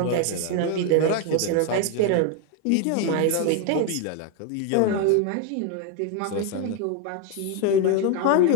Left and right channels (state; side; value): different; both; correlation 0.01